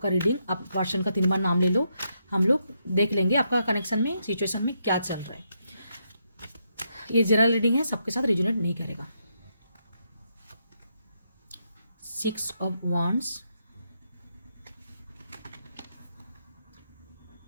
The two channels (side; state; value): both; inverted; correlation -0.80